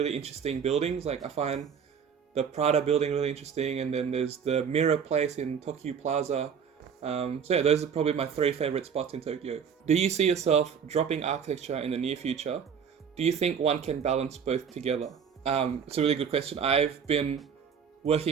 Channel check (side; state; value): left; quieter; 7.2 dB